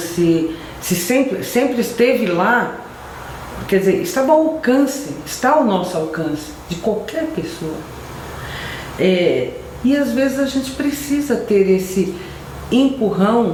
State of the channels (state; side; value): identical; both; correlation 1.00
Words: sempre esteve lá, quer dizer, estava ao alcance, está ao nosso alcance, de qualquer pessoa. E às vezes a gente precisa ter esse